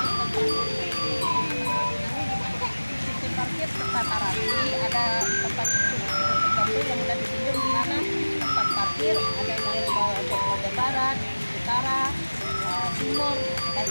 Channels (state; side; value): inverted; both; correlation -1.00